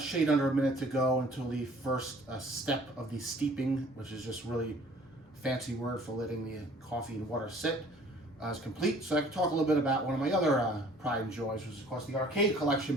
under a minute to go until the first step of the steeping, which is just really a fancy word for letting the coffee and water sit, is complete. So I can talk a little bit about one of my other pride and joys, which is of course the arcade collection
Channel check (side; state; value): both; normal; correlation 0.54